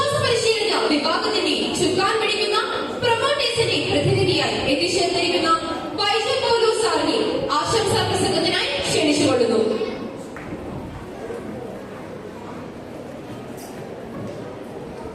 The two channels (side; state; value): both; identical; correlation 1.00